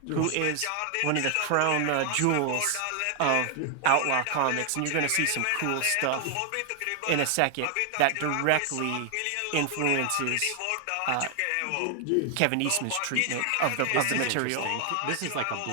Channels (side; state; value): both; different; correlation 0.00